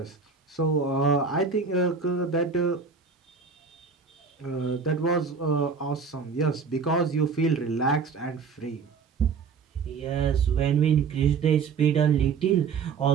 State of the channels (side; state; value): left; quieter; 5.5 dB